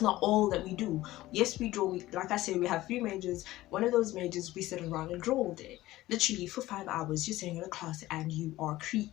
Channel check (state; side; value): quieter; right; 16.7 dB